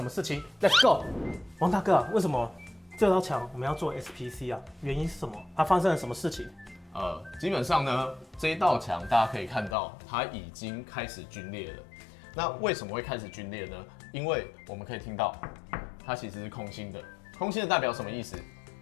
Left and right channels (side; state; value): right; drops out; at 9.8 s